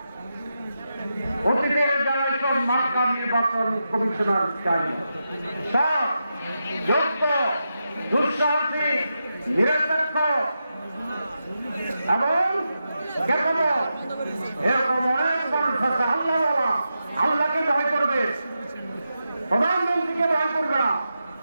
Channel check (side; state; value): both; inverted; correlation -0.88